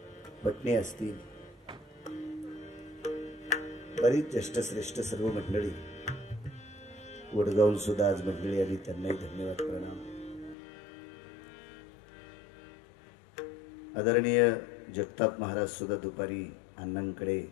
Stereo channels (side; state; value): right; drops out; at 10.6 s